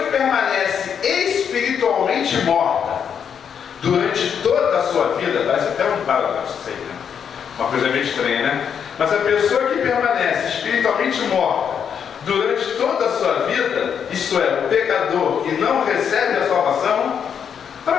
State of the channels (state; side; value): quieter; right; 7.7 dB